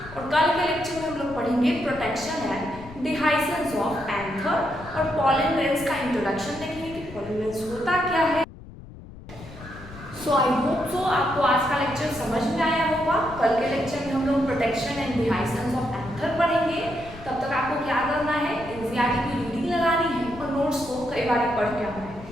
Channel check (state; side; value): noise; left; rumble, 16 dB below the sound